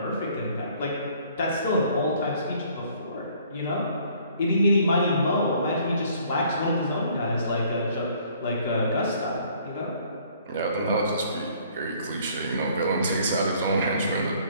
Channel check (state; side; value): inverted; both; correlation -0.59